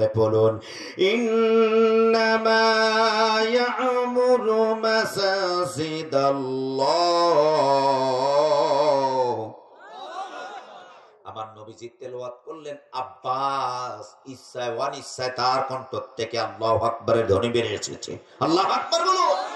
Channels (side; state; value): both; identical; correlation 1.00